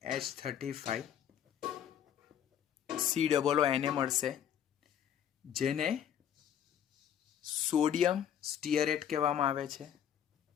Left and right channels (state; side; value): quieter; right; 9.5 dB